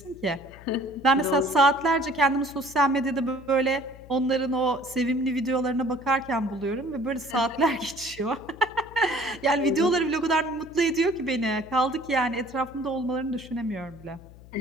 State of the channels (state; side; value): noise; left; hum, 20 dB below the sound